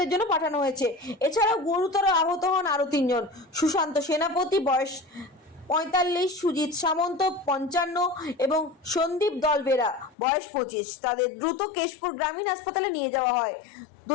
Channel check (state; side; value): drops out; right; at 10.2 s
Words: জন্য পাঠানো হয়েছে। এছাড়াও গুরুতর আহত হন আরো 3 জন। সুশান্ত সেনাপতি, বয়স 45, সুজিত সামন্ত 55 এবং সন্দীপ দলবেরা, বয়স 25। তাদের দ্রুত কেশপুর গ্রামীণ হাসপাতালে নিয়ে যাওয়া হয়।